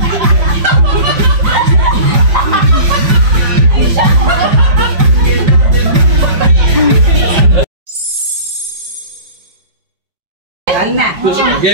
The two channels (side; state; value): left; late; 5.3 ms